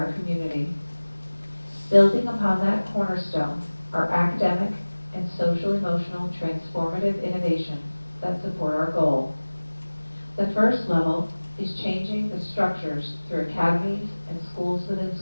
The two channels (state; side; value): inverted; both; correlation -1.00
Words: community. Building upon that cornerstone are academic and social-emotional transformative innovations that support our goal. The first level is changing the structures through academies and schools within